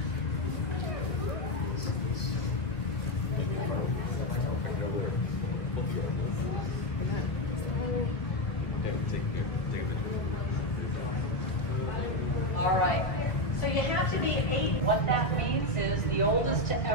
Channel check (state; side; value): late; right; 2.1 ms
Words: All right. So you have to be 8. What that means is the oldest to